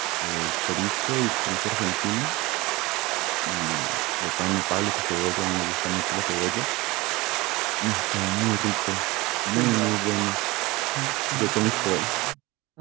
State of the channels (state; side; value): quieter; left; 22.0 dB